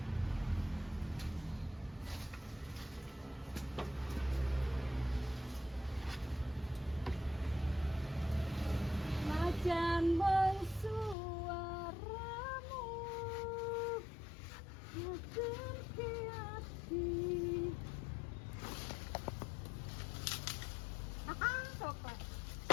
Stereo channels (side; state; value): right; drops out; at 11.2 s